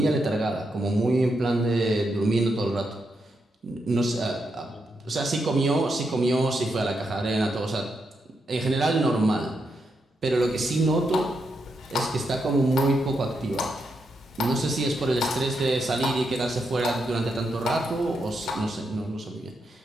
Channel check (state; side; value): normal; both; correlation 0.82